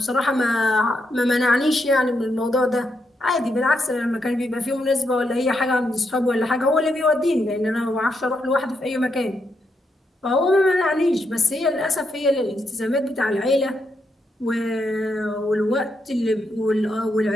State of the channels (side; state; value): both; normal; correlation 0.81